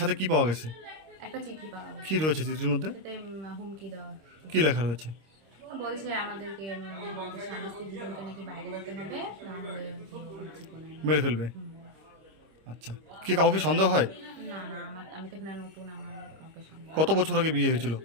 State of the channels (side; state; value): left; late; 26 ms